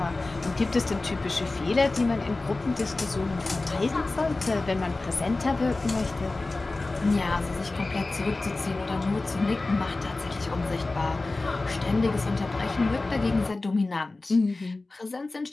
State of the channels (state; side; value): quieter; right; 3.2 dB